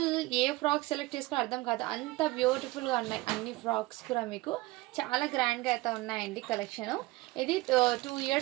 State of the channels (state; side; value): quieter; left; 20.4 dB